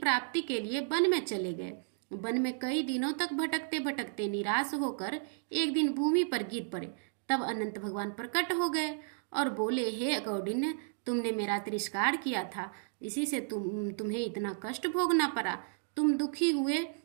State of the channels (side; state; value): left; silent; digital silence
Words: के लिए वन में चले गए। वन में कई दिनों तक भटकते भटकते निराश होकर एक दिन भूमि पर गिर पड़े। तब अनंत भगवान प्रकट हो गए और बोले, हे कौंडिन्य, तुमने मेरा तिरस्कार किया था, इसी से तुम्हें इतना कष्ट भोगना पड़ा। तुम दुखी हुए,